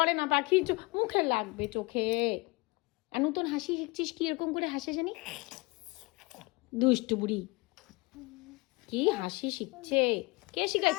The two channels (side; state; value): right; quieter; 25.4 dB